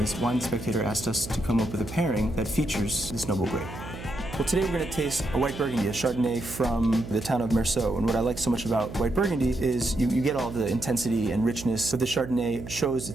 Wine Spectator asked us to come up with a pairing that features this noble grape. Well, today we're going to taste a white Burgundy, a Chardonnay from the town of Meursault. And what I like so much about white Burgundy is you get all the intensity and richness, but the Chardonnay shows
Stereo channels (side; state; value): right; noise; hum, 11 dB below the sound